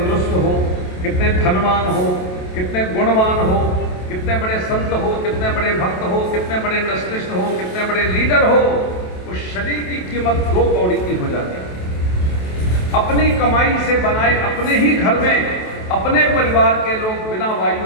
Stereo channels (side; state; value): right; late; 28 ms